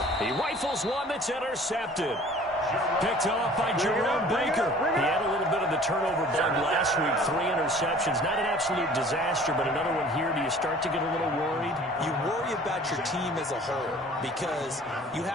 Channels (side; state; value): both; normal; correlation 0.49